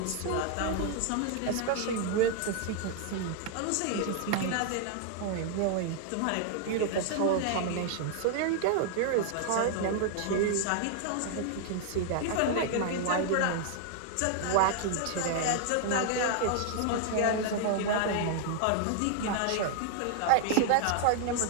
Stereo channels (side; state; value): both; different; correlation 0.00